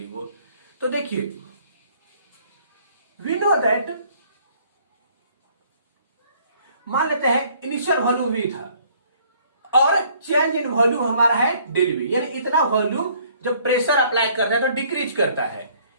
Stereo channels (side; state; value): both; inverted; correlation -0.61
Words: वो। तो देखिए वी नो दैट, मान लेते हैं इनिशियल वॉल्यूम V था और चेंज इन वॉल्यूम हमारा है डेल V, यानी इतना वॉल्यूम जब प्रेशर अप्लाई करते हैं तो डिक्रीज करता है।